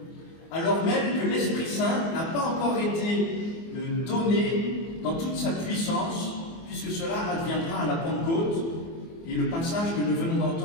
alors même que l'Esprit Saint n'a pas encore été donné dans toute sa puissance, puisque cela adviendra à la Pentecôte. Et le passage que nous venons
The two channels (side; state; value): right; late; 24 ms